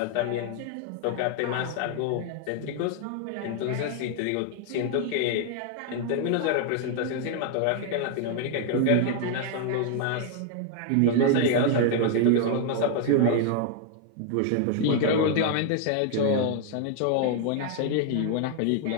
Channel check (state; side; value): different; both; correlation 0.00